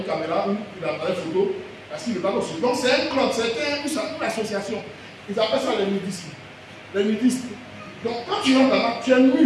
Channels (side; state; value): both; identical; correlation 1.00